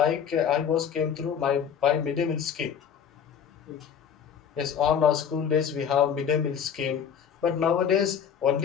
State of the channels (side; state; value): right; quieter; 7.9 dB